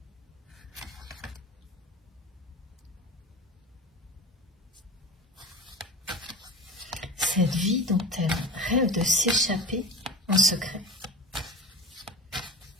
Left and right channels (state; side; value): normal; both; correlation 0.32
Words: Cette vie dont elle rêve de s'échapper en secret.